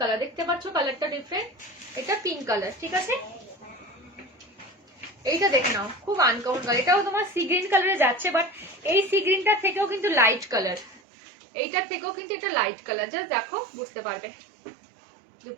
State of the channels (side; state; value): left; drops out; at 11.0 s